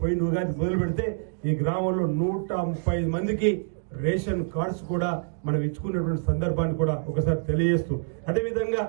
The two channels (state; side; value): silent; left; digital silence